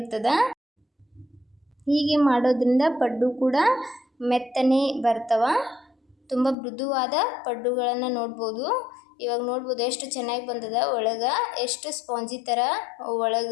ಹೀಗೆ ಮಾಡೋದ್ರಿಂದ ಪಡ್ಡು ಕೂಡ ಮೆತ್ತನೆ ಬರ್ತವೆ. ತುಂಬ ಮೃದುವಾದ ಪಡ್ಡುಗಳನ್ನು ನೋಡ್ಬೋದು. ಇವಾಗ ನೋಡ್ಬೋದು ಎಷ್ಟು ಚೆನ್ನಾಗಿ ಬಂದದ, ಒಳಗೆ ಎಷ್ಟು ಸ್ಪಾಂಜಿ ಥರ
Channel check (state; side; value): drops out; right; at 6.6 s